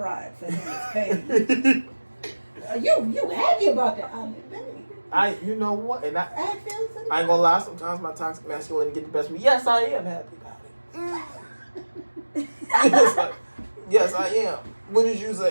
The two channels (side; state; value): both; inverted; correlation -1.00